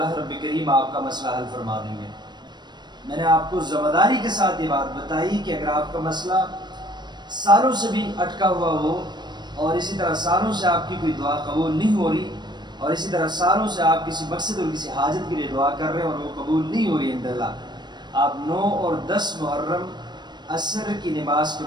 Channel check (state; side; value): late; left; 0.21 ms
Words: رب کریم آپ کا مسئلہ حل فرما دیں گے۔ میں نے آپ کو ذمہ داری کے ساتھ یہ بات بتائی کہ اگر آپ کا مسئلہ سالوں سے بھی اٹکا ہوا ہو، اور اسی طرح سالوں سے آپ کی کوئی دعا قبول نہیں ہو رہی، اور اسی طرح سالوں سے آپ کسی مقصد اور کسی حاجت کے لیے دعا کر رہے ہیں اور وہ قبول نہیں ہو رہی الحمدللہ، آپ 9 اور 10 محرم عصر کی نماز کے